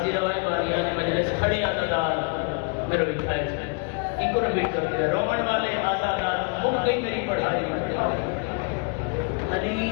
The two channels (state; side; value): quieter; right; 35.5 dB